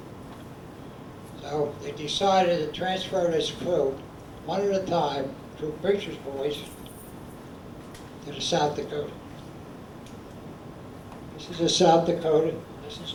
So they decided to transfer this crew, one at a time, through preacher's boys, to the South Dakota. This is the South Dakota. This is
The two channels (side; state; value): both; identical; correlation 1.00